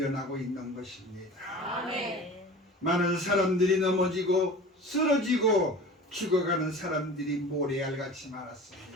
있는 것입니다. 아멘. 많은 사람들이 넘어지고 쓰러지고 죽어가는 사람들이 모래알같이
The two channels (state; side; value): normal; both; correlation 0.38